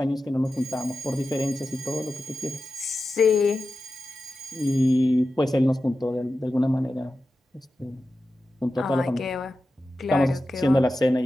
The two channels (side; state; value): both; normal; correlation 0.92